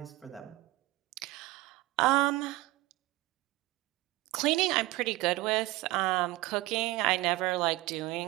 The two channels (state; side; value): quieter; left; 19.7 dB